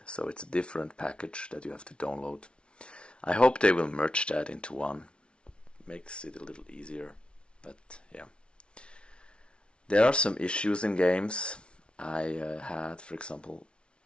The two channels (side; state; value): right; late; 0.058 ms